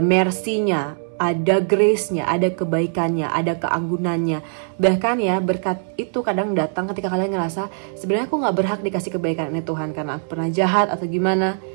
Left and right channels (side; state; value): left; silent; 65 dB below the other